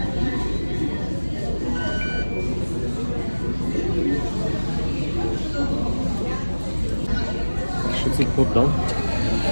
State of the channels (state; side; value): inverted; both; correlation -1.00